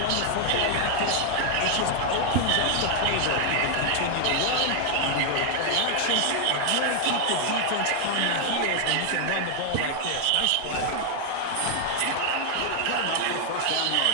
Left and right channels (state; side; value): different; both; correlation 0.00